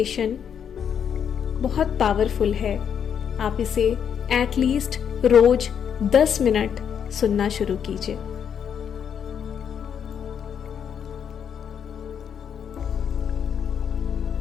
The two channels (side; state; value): right; quieter; 8.0 dB